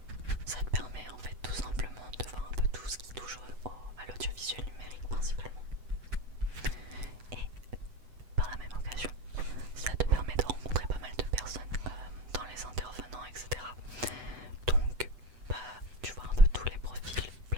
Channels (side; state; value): left; late; 8.0 ms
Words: ça te permet en fait tout simplement de voir un peu tout ce qui touche à l'audiovisuel numérique principalement. Et par la même occasion, ça te permet de rencontrer pas mal de personnes dans les intervenants, etc. Donc tu vois un peu tous les profils,